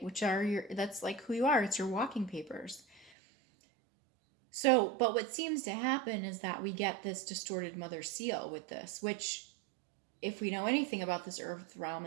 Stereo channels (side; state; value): left; drops out; at 3.1 s